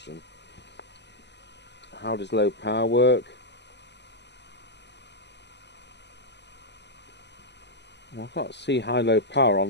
How does low power work? Well, I can't see high-low power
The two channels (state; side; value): late; right; 0.50 ms